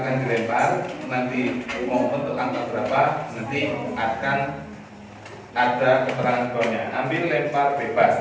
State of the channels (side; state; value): both; identical; correlation 1.00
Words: dilempar, nanti mau untuk angka berapa nanti akan ada keterangan bawahnya. Ambil lempar